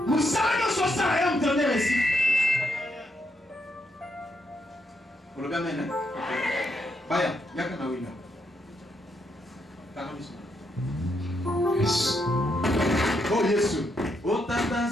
Nous savons que ça a un dernier ici. Pour le gamin, hein? Baya, yaka na wina. Yes. Oh Yesu. Oh tata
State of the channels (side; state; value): both; normal; correlation 0.78